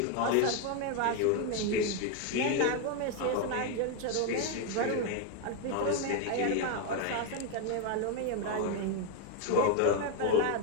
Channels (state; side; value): different; both; correlation 0.01